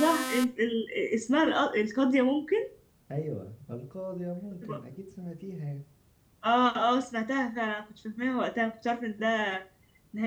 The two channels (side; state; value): both; identical; correlation 1.00